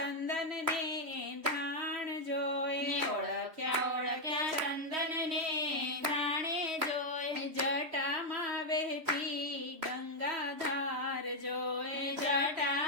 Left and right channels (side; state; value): left; late; 3.1 ms